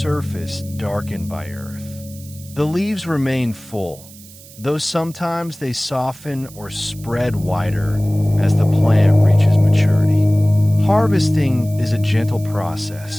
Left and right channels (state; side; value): noise; right; hiss, 20 dB below the sound